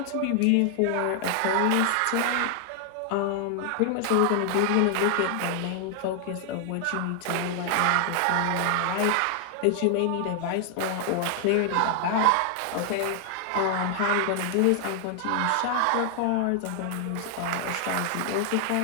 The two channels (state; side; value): different; both; correlation 0.00